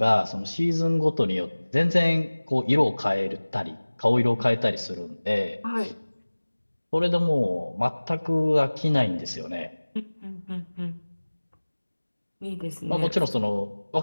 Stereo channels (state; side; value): inverted; both; correlation -1.00